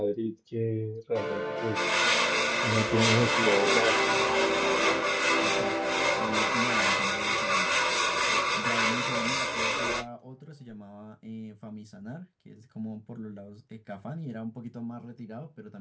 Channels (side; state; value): both; identical; correlation 1.00